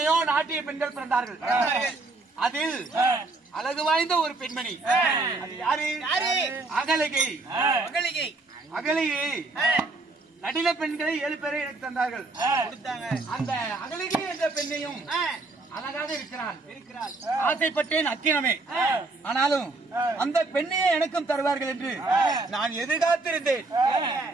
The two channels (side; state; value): left; quieter; 3.3 dB